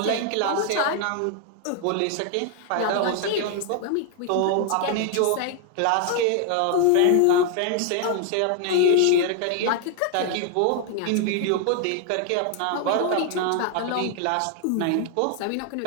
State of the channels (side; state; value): both; different; correlation 0.00